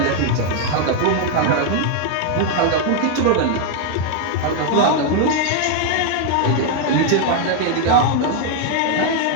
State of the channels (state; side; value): different; both; correlation 0.00